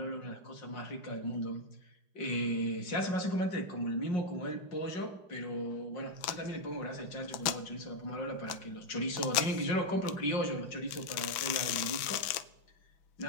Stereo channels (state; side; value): late; right; 5.9 ms